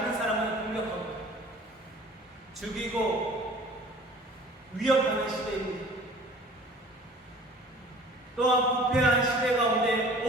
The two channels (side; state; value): both; normal; correlation 0.47